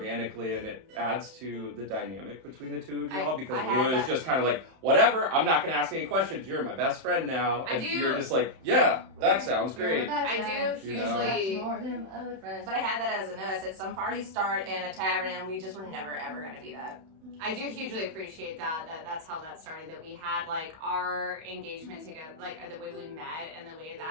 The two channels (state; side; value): late; left; 31 ms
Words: and it adds to the dynamic between the two of y'all, because I had Lua is that- just kind of like, whatever, I'm not gonna ask any questions, you're my best friend now. I And do- you're just like, yeah, that sounds great. I do You know? hugely. More than other friends. But I had that as a note. I said some parties start in a tavern, and we just were never ever going to be that. I do hugely appreciate that's how that started, that we had like our engagement together, like the way we met and the way